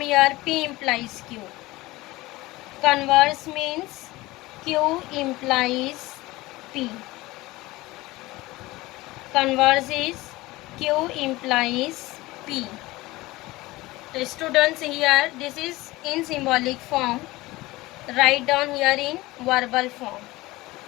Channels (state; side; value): quieter; right; 19.7 dB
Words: here? P implies Q. Converse means Q implies P. Converse is Q implies P. So students, here this is in symbolic form. Write down here in verbal form.